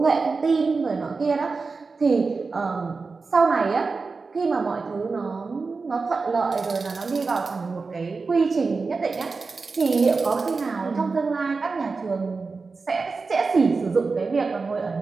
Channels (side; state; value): left; quieter; 4.3 dB